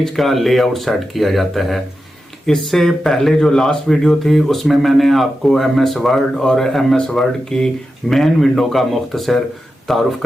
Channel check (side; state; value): both; normal; correlation 0.90